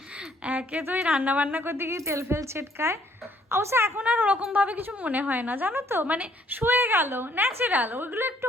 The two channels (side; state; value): both; normal; correlation 0.64